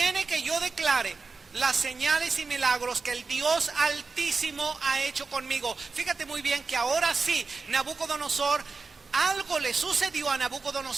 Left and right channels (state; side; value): quieter; left; 4.4 dB